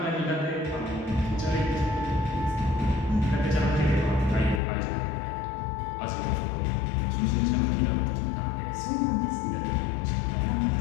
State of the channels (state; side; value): drops out; right; at 4.6 s